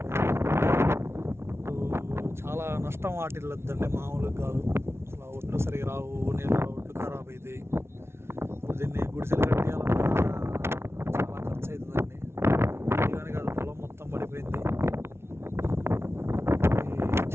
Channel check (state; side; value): late; left; 0.12 ms